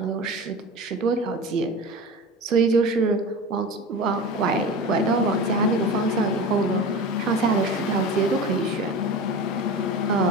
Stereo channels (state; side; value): normal; both; correlation 0.31